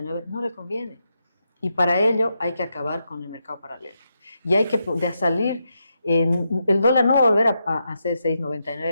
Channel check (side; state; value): both; inverted; correlation -0.84